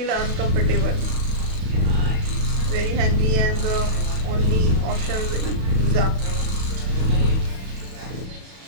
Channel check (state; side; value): late; left; 32 ms